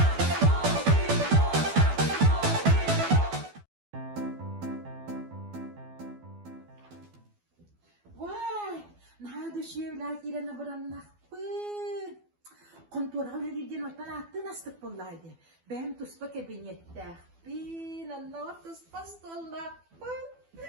Vay. Nada şiirler girene bıranmak. Kontura öyle ortadan attı nasıl bulaydı. Ben tuspa kabinette. Bin anlama tuspas dolla.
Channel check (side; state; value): left; late; 12 ms